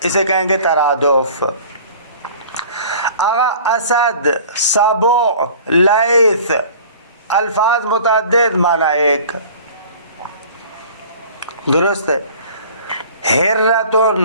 اسے کہیں گے ترادف. آگا اسد، سبع، لیث الفاظ متعدد معنی ایک، درست ہے.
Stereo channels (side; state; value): both; inverted; correlation -0.46